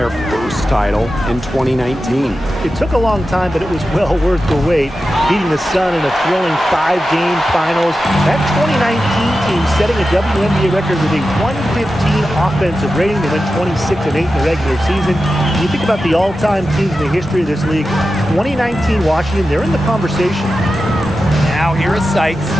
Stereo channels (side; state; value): both; normal; correlation 0.92